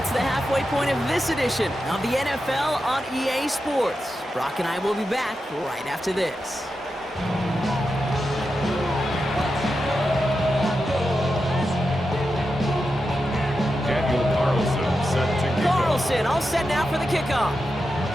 the halfway point of this edition of the NFL on EA Sports. Brock and I will be back right after this. Daniel Carlson set to kick off. Carlson all set now for the kickoff.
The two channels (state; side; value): normal; both; correlation 0.89